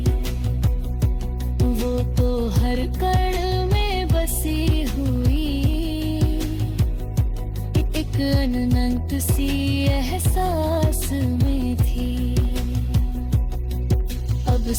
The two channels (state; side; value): identical; both; correlation 1.00